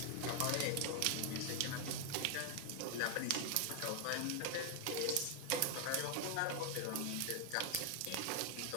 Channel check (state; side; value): different; both; correlation 0.00